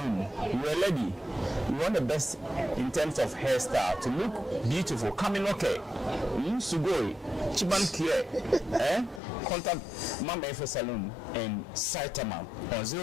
You're a lady. You want the best in terms of hairstyle to look beautiful. Coming okay. Sugoi. Chiban Kie. Contact Mama Efe Saloon in Saitama on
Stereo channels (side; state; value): right; drops out; at 9.2 s